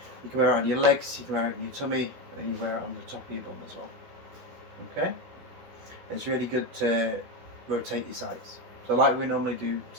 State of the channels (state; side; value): late; left; 16 ms